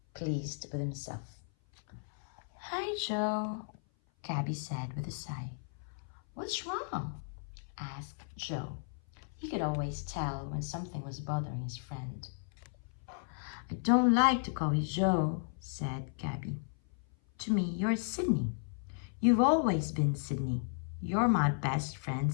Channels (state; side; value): silent; right; 55 dB below the other